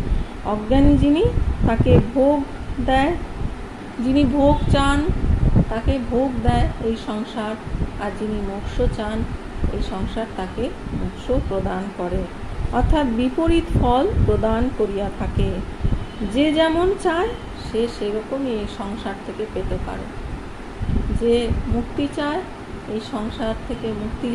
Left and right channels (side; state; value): both; identical; correlation 1.00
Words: অজ্ঞানী যিনি, তাকে ভোগ দেয়, যিনি ভোগ চান তাকে ভোগ দেয় এই সংসার, আর যিনি মোক্ষ চান এই সংসার তাকে মোক্ষ প্রদান করে, অর্থাৎ বিপরীত ফল প্রদান করিয়া থাকে। যে যেমন চায় সে সেরকমই এই সংসার থেকে পেতে পারে। যে মুক্তি চায় এই সংসার থেকে মুক্তি